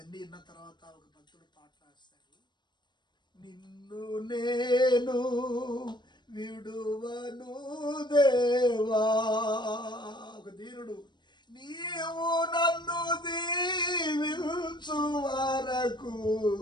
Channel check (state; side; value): late; right; 0.22 ms